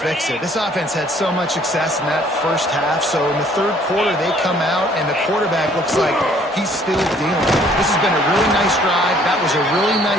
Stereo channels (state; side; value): normal; both; correlation 0.60